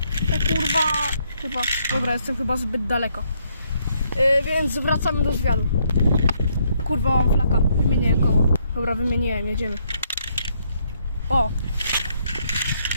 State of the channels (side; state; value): both; inverted; correlation -0.72